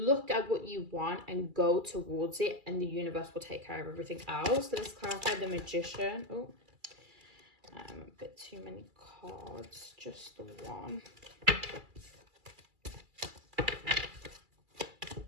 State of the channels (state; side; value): late; left; 2.3 ms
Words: at what you want and go towards it, and the universe will take care of everything else. So let's clarify the Magician. Oh, a bit too many cards, just the one.